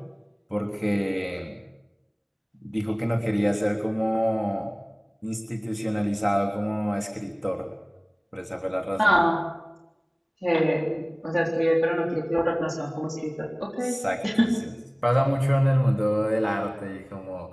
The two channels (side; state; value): both; identical; correlation 1.00